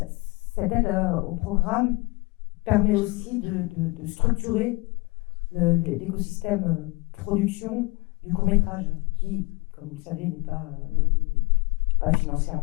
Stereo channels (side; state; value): right; quieter; 25.3 dB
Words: cette aide au programme permet aussi de structurer l'écosystème production du court-métrage qui, comme vous le savez, n'est pas